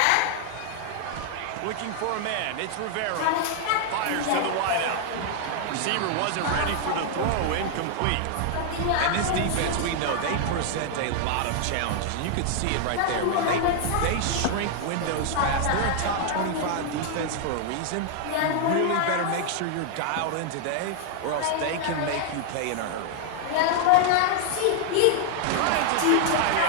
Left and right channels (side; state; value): both; different; correlation 0.00